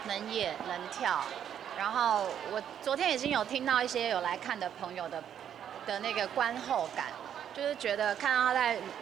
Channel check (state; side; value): quieter; left; 9.3 dB